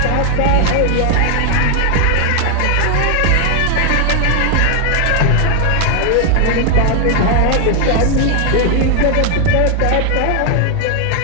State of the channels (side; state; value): both; different; correlation 0.00